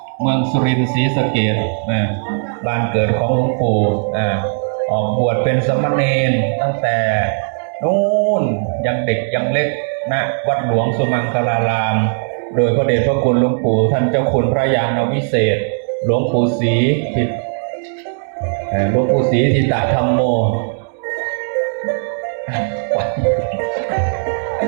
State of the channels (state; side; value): silent; left; digital silence